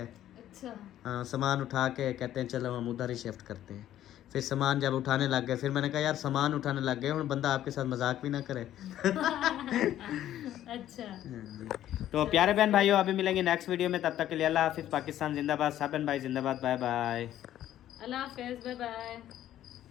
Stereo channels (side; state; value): right; quieter; 12.2 dB